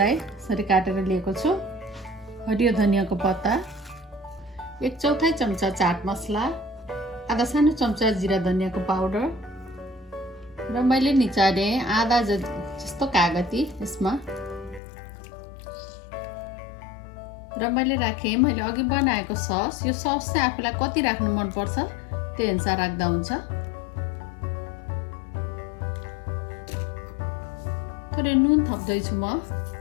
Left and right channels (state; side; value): drops out; right; at 14.8 s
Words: यसरी काटेर लिएको छु। हरियो धनियाँको पत्ता, 1/4 चम्चा चाट मसला, आधा सानो चम्चा जिरा धनियाँको पाउडर, र मैले निचारे आधा जस्तो कागती यसमा। र मैले राखेँ मैले अघि बनाएको सस। यो सस चाहिँ आफूलाई कति राख्नु मनपर्छ त्यही अनुसार राख्दा हुन्छ। थोरै नुन थप्दैछु म